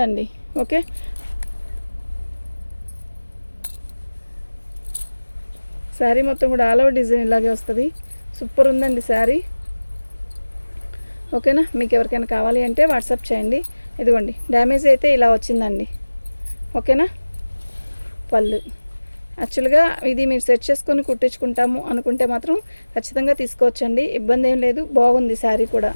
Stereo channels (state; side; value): inverted; both; correlation -1.00